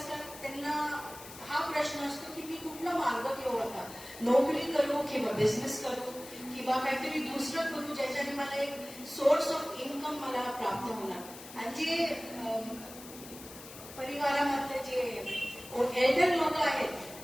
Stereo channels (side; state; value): left; noise; hiss, 15 dB below the sound